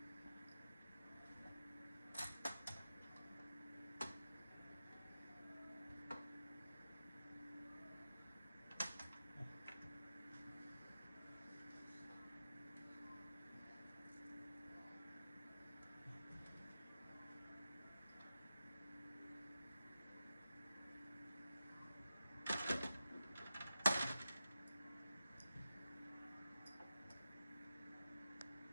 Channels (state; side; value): inverted; both; correlation -0.91